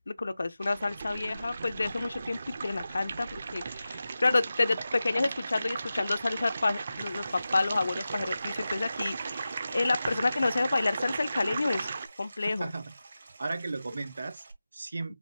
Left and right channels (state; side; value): inverted; both; correlation -0.94